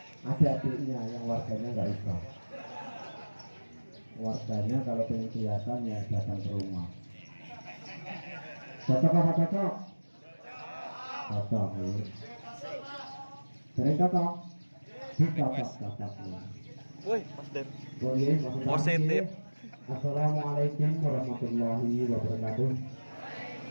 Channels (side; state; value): both; inverted; correlation -1.00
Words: Ada adiknya yang warganya nggak usah. Warganya kalau pengen kelihatan ya datang ke rumah. Cocok apa cocok? Cocok nih. Sering cocok? Cocok nih. Woi, Mas Den. Positif. Positif. Assalamualaikum warahmatullahi wabarakatuh.